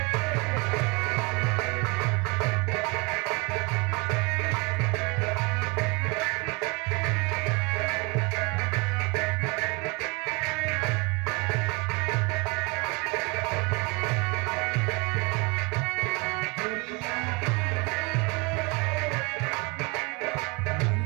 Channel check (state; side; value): quieter; left; 28.1 dB